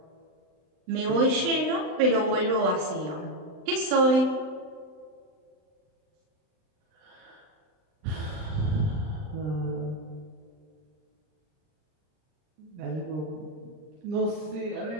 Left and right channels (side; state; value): left; late; 39 ms